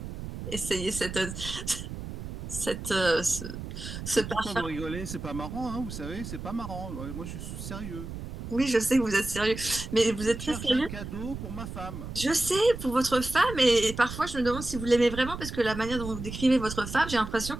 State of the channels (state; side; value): noise; right; rumble, 8 dB below the sound